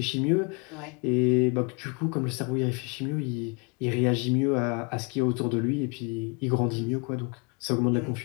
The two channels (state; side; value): quieter; right; 33.6 dB